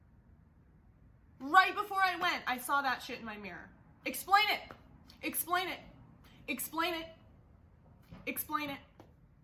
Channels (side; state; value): both; identical; correlation 1.00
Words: right before I went, I saw that shit in my mirror. Explain it.